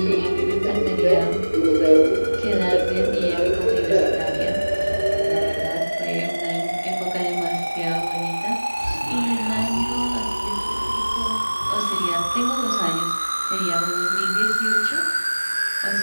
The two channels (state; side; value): inverted; both; correlation -1.00